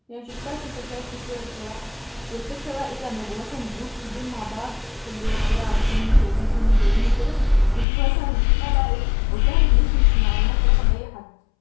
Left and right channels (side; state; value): right; drops out; at 7.9 s